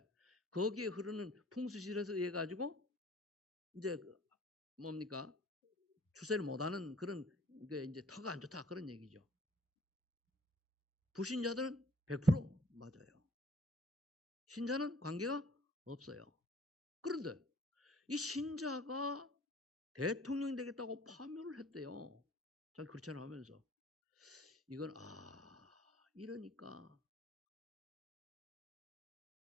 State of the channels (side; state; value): both; normal; correlation 0.54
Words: 거기에 흐르는 풍수질에서 의해 가지고 이제 뭡니까? 출세를 못하는 그런 게 이제 터가 안 좋다 그런 얘기죠. 불신자들은 100% 맞아요. 신자는 관계가 없어요. 그런데 이 신자가 대통령이 되겠다고 파묘를 했대요. 자기 그렇잖아 하면서. 이건 이러니까